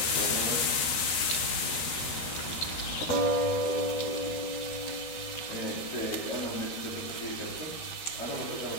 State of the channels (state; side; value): late; right; 13 ms